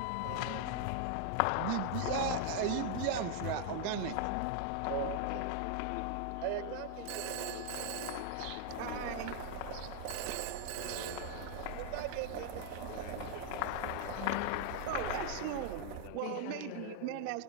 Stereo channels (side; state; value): both; different; correlation 0.00